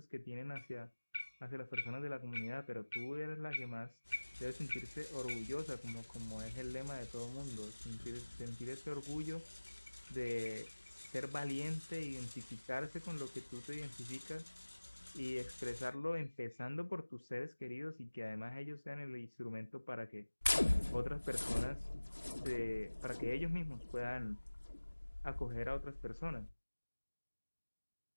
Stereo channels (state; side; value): inverted; both; correlation -1.00